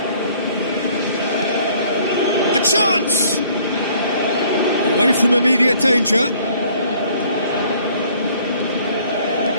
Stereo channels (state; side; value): inverted; both; correlation -0.58